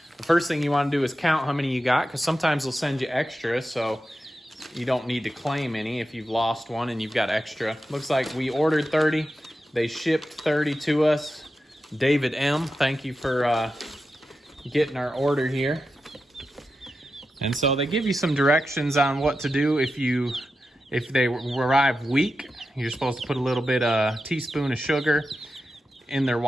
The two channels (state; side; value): normal; both; correlation 0.90